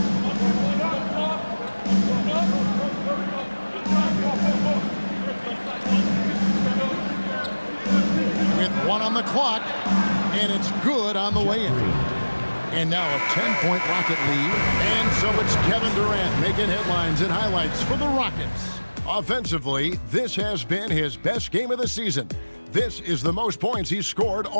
With 1 on the clock, and it's good on the way in. And now a 10-point Rocket lead. And so it's Kevin Durant making headlines and highlights for the Rockets. Offensively, this has been his best game of the season. This is the most points he's scored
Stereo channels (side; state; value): both; inverted; correlation -1.00